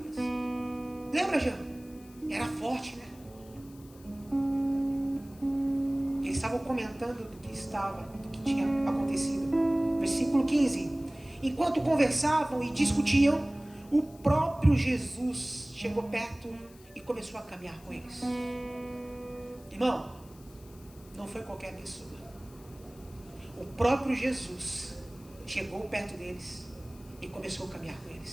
Lembra, Jean? Era forte, né? Eles estavam comentando do que tinha acontecido. Versículo 15. Enquanto conversavam e discutiam, o próprio Jesus chegou perto e começou a caminhar com eles. Irmão, não foi qualquer pessoa. O próprio Jesus chegou perto deles e começou a caminhar com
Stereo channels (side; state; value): left; noise; hiss, 25 dB below the sound